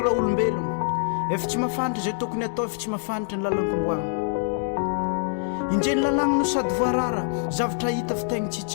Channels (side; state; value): right; silent; digital silence